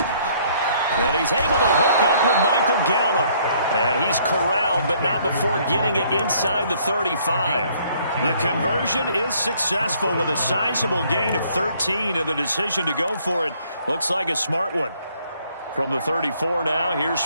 And he's able to hook up with Michael Gallup. And he's corralled, but not before getting it inside the 35. The conversion is successful with a sizable gain of 13, and the decision to go for it looks like a smart one. From the 34 now, here's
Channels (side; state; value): both; inverted; correlation -0.63